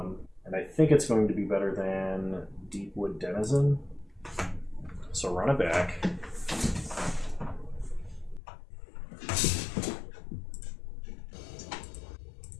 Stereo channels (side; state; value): right; drops out; at 8.4 s